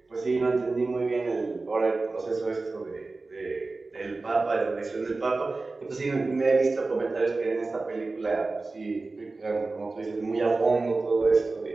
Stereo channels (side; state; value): left; quieter; 3.6 dB